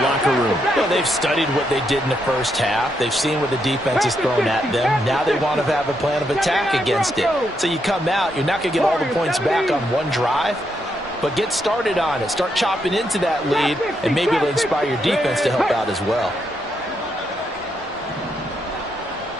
room? Well, they've studied what they did in the first half. They've seen what the defense has thrown at them. Now they want to have a plan of attack against it. So you come out, you're not going to get all the points back on one drive, but get started on it. Start chopping into that lead, and maybe it'll inspire your defense to help out as well.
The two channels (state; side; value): normal; both; correlation 0.79